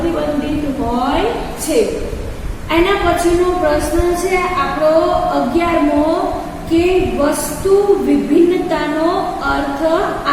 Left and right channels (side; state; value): both; identical; correlation 1.00